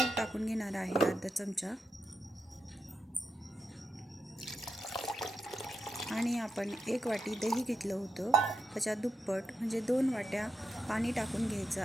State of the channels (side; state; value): both; normal; correlation 0.85